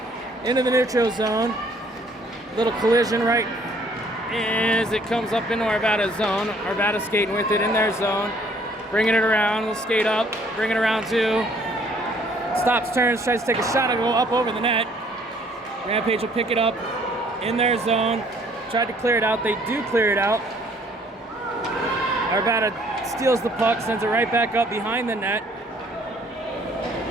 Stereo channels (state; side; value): normal; both; correlation 0.61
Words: Into the neutral zone. Little collision right as it comes up into Arvada's zone. Arvada skating with it in their zone. Bringing it around. We'll skate up. Bring it around too. Stops, turns, tries to take a shot and go up over the net. Rampage will pick it up in their zone. Tried to clear it out. They do clear it out. Arvada steals the puck, sends it right back up behind the net.